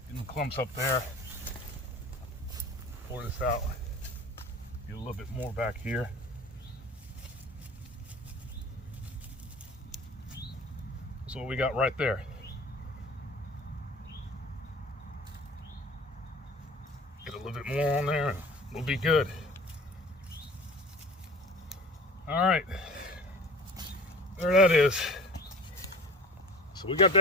Getting the clumps up there. Pour this out. Get a little bit more back here. That's what we got right there. Get a little bit more on there and we'll be good. All right. There that is. So we got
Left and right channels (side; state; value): both; normal; correlation 0.39